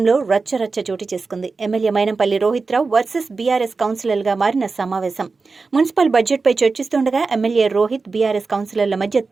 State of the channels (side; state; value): left; quieter; 4.2 dB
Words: రచ్చరచ్చ చోటు చేసుకుంది. MLA Mynampally Rohit Rao versus BRS కౌన్సిలర్గా మారిన సమావేశం. మున్సిపల్ బడ్జెట్పై చర్చిస్తుండగా ఎమ్మెల్యే రోహిత్, బీఆర్ఎస్ కౌన్సిలర్ల మధ్య